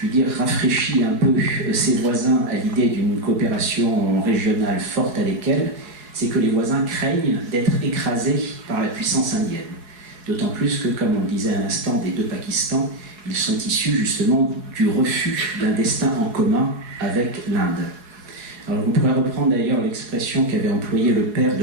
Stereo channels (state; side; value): late; left; 4.7 ms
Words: dire, rafraîchit un peu ses voisins à l'idée d'une coopération régionale forte avec elle, c'est que les voisins craignent d'être écrasés par la puissance indienne. D'autant plus que, comme on le disait à l'instant, des deux Pakistans, ils sont issus justement du refus d'un destin en commun avec l'Inde. Alors on pourrait reprendre d'ailleurs l'expression qu'avait employée le père